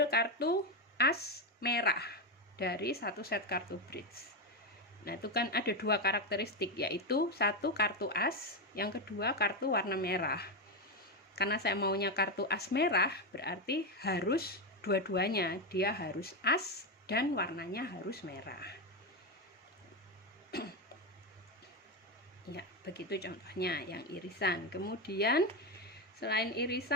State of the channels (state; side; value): normal; both; correlation 0.10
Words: kartu as merah dari satu set kartu bridge. Nah, itu kan ada dua karakteristik, yaitu satu kartu as, yang kedua kartu warna merah. Karena saya maunya kartu as merah, berarti harus dua-duanya, dia harus as dan warnanya harus merah. Ya, begitu contohnya yang irisan. Kemudian selain